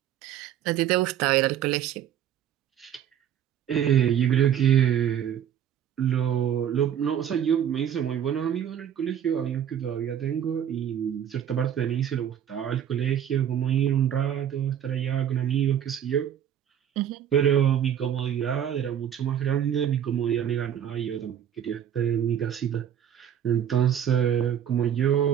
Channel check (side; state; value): left; quieter; 9.6 dB